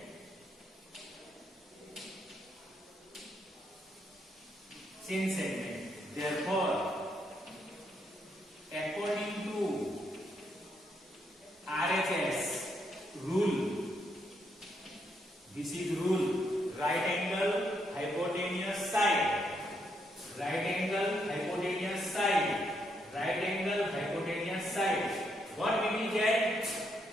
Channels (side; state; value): both; normal; correlation 0.77